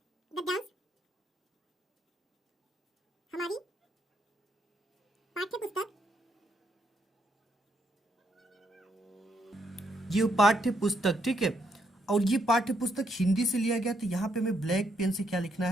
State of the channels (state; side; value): normal; both; correlation 0.75